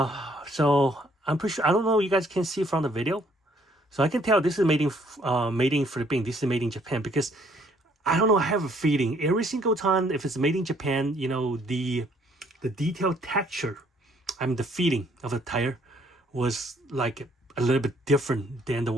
I'm pretty sure, I don't know, you guys can see from the video. So I can tell this is made in Philippines. This is made in Japan, because I don't know, I have a feeling every single time if it's made in Japan, you know, the detailed texture, I mean the feeling of the tire was like a little bit different than the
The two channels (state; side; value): normal; both; correlation 0.65